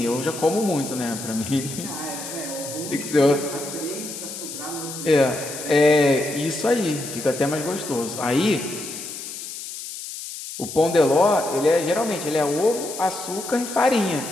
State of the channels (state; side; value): noise; left; hiss, 9 dB below the sound